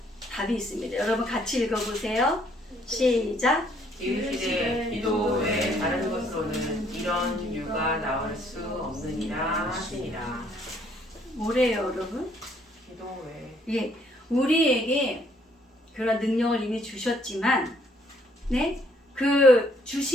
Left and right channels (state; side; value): normal; both; correlation 0.66